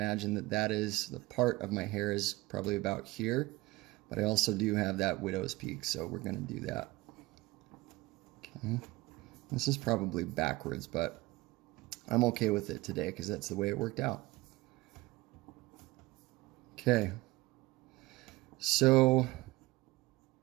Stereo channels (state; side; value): quieter; left; 20.0 dB